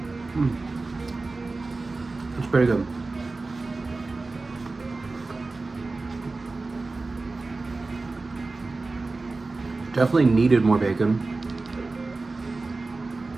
pretty good. Definitely needed more bacon.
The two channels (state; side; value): quieter; left; 3.5 dB